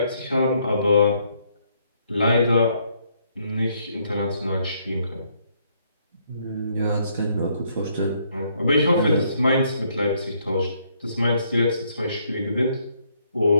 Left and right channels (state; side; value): inverted; both; correlation -0.70